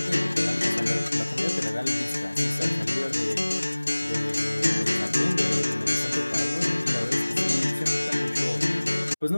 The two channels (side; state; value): both; inverted; correlation -1.00